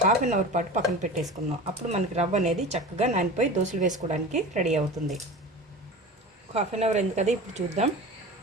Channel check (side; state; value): both; normal; correlation 0.33